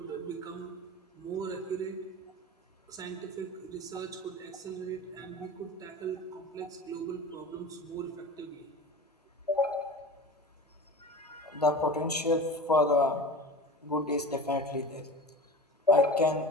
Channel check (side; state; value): both; normal; correlation 0.33